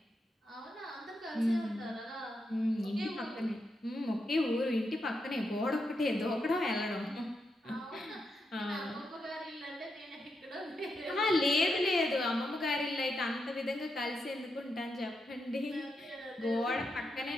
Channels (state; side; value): normal; both; correlation 0.84